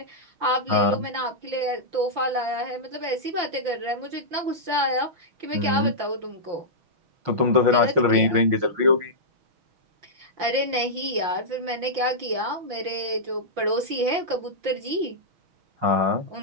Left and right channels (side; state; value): left; late; 5.7 ms